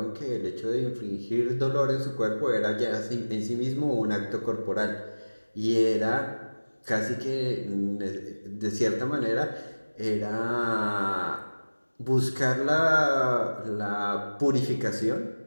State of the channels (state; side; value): inverted; both; correlation -1.00